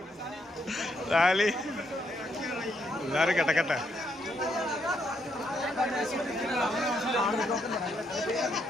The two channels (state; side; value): normal; both; correlation 0.76